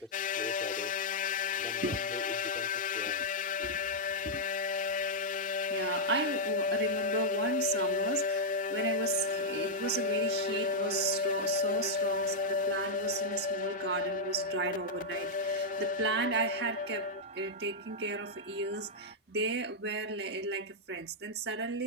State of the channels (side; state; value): both; normal; correlation -0.06